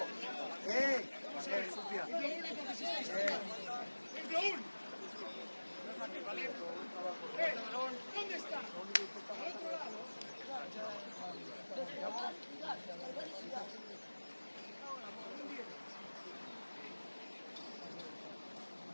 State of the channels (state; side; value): inverted; both; correlation -1.00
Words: Bien, Sofía. ¿Dónde está? Al otro lado.